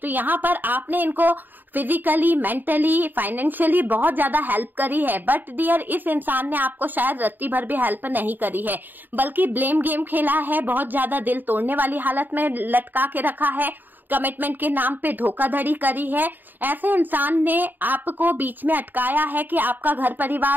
यहाँ पर आपने इनको फिजिकली, मेंटली, फाइनेंशियली बहुत ज्यादा हेल्प करी है, बट डियर इस इंसान ने आपको शायद रत्ती भर भी हेल्प नहीं करी है, बल्कि ब्लेम गेम खेला है, बहुत ज्यादा दिल तोड़ने वाली हालत में लटका के रखा है, कमिटमेंट के नाम पे धोखाधड़ी करी है। ऐसे इंसान ने आपको बीच में अटकाया है कि आपका घर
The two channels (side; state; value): left; late; 0.090 ms